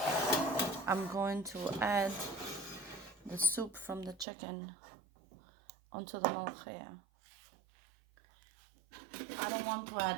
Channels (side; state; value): left; drops out; at 4.2 s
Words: I'm going to add the soup from the chicken onto the molokheya. I don't want to